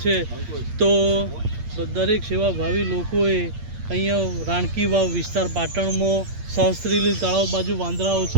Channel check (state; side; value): late; left; 8.6 ms